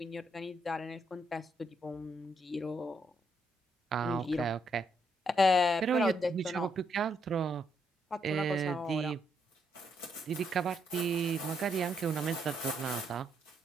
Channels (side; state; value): both; normal; correlation 0.75